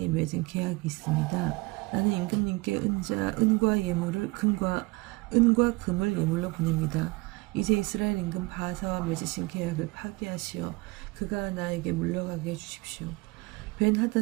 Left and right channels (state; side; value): quieter; left; 24.3 dB